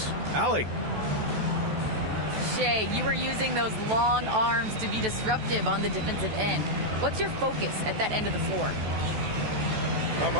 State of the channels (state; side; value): late; left; 14 ms